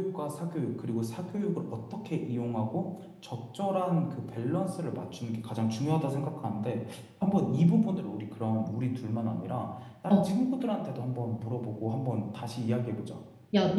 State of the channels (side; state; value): both; identical; correlation 1.00